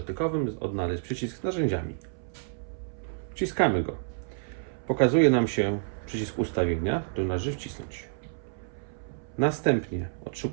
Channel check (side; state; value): left; silent; 58 dB below the other